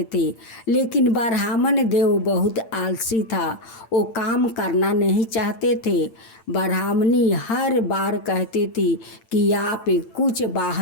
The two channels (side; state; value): right; late; 8.9 ms